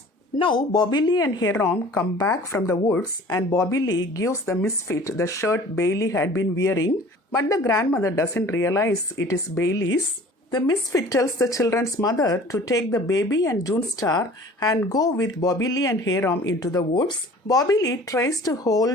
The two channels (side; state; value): both; normal; correlation 0.47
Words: Now, Bobby Lee and Hiram come back from the woods and Bobby Lee gives the Misfit the shirt Bailey had been wearing, but the grandmother doesn't realize it is Bailey's. The Misfit tells the children's mother to take the baby and June Star and go with Bobby Lee and Hiram into the woods. Bobby Lee tries to